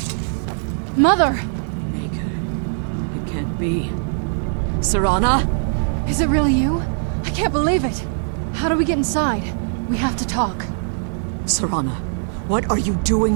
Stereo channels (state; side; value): silent; left; digital silence